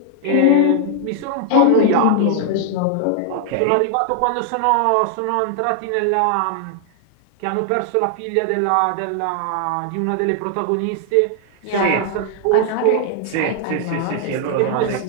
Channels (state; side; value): different; both; correlation 0.00